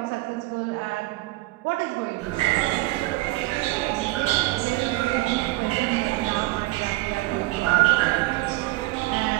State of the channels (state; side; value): quieter; left; 20.3 dB